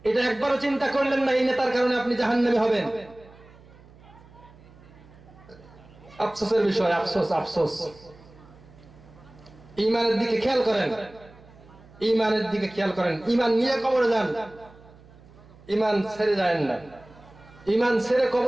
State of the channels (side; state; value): right; noise; hum, 23 dB below the sound